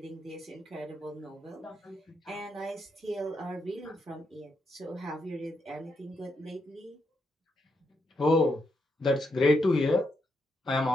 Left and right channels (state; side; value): normal; both; correlation 0.81